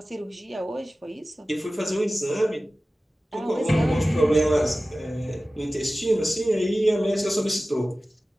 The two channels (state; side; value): normal; both; correlation 0.96